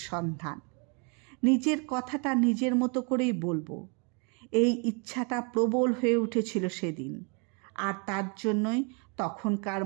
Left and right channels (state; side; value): quieter; left; 34.8 dB